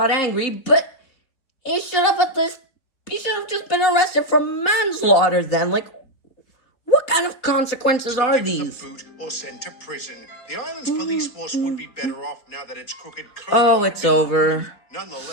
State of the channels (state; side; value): late; right; 4.0 ms